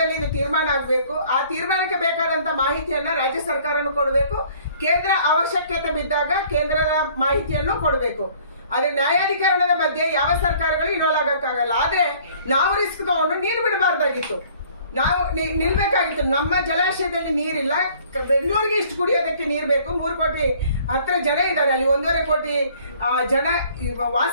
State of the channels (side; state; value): both; inverted; correlation -0.56